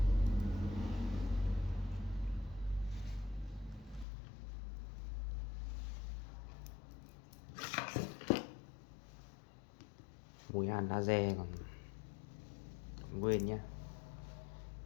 Mùi hàn laser còn nguyên nhé.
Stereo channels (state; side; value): drops out; right; at 4.0 s